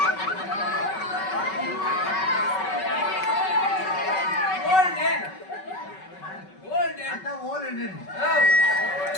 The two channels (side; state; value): right; late; 5.3 ms